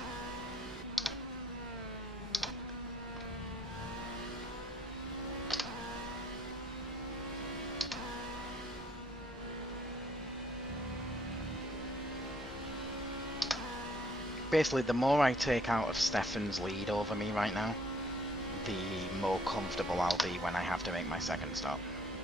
Basically, the more I take out of Stefan's lead over me right now, the more comfortable I'll be when I have to make my second stop.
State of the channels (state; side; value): normal; both; correlation 0.64